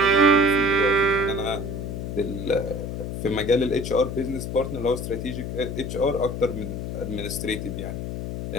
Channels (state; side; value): noise; left; hum, 5 dB below the sound